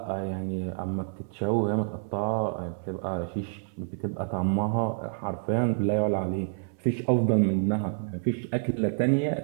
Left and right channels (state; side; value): silent; left; 59 dB below the other